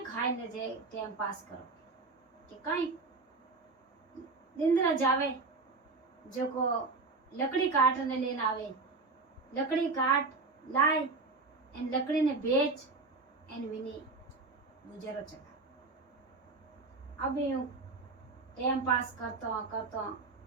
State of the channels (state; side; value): quieter; left; 3.9 dB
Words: खाए न जे टाइम पास करो कि कहीं दिंदरा जावे जो को लकड़ी काटने लेना आवे लकड़ी काट लाए एन लकड़ी ने बेच एन विनी गुजरो चला। अब यूं टाइम पास करतो